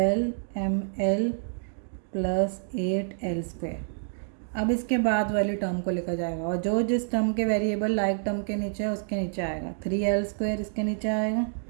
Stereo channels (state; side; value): silent; left; digital silence